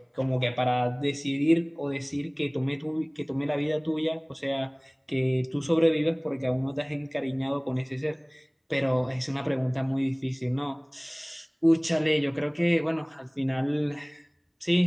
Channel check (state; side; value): identical; both; correlation 1.00